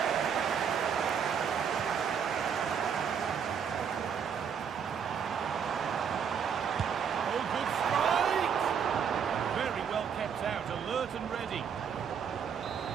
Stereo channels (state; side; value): quieter; left; 7.3 dB